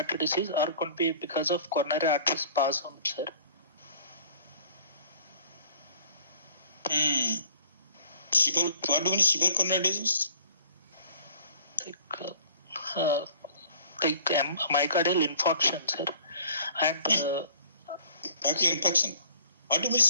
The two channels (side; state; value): both; inverted; correlation -0.51